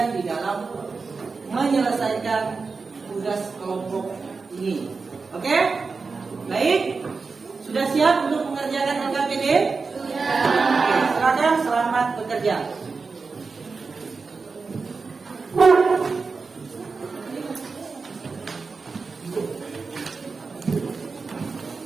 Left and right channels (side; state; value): left; quieter; 4.5 dB